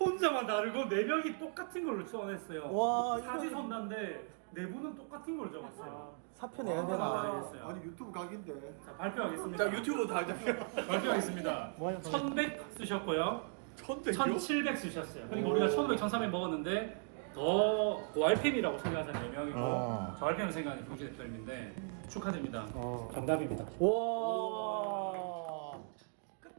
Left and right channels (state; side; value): silent; left; 53 dB below the other